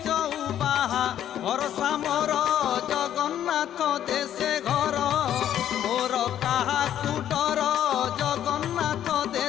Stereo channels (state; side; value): quieter; right; 10.8 dB